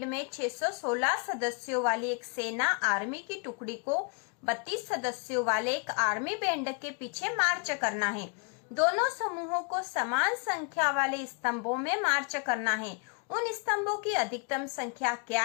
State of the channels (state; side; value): quieter; right; 36.6 dB